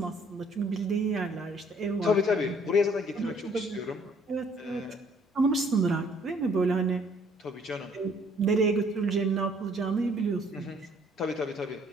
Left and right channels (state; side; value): normal; both; correlation 0.61